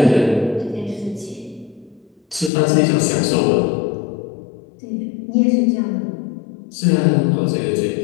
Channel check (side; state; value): right; drops out; at 2.5 s